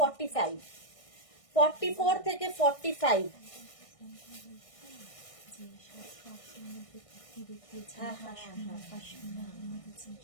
44 থেকে 45।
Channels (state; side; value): late; right; 1.6 ms